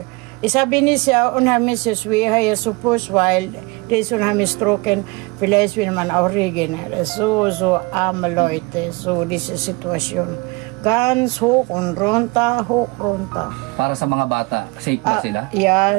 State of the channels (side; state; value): left; quieter; 26.4 dB